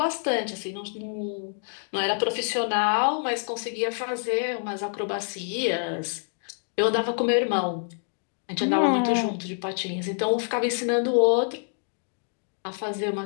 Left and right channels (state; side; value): silent; right; 60 dB below the other